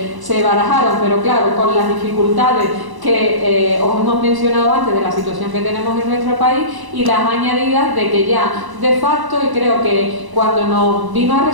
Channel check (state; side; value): late; left; 1.0 ms